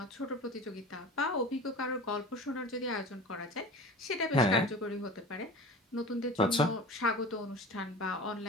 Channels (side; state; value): both; normal; correlation 0.36